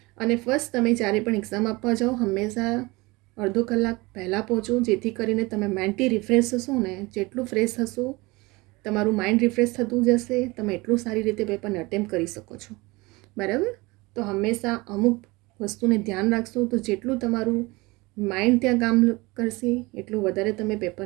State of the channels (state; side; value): quieter; left; 23.4 dB